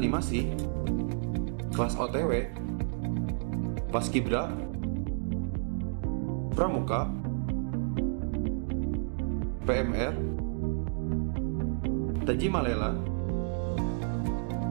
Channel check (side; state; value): left; silent; digital silence